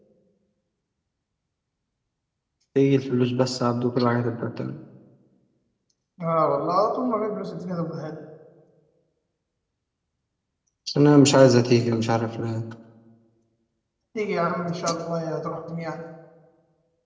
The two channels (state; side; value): identical; both; correlation 1.00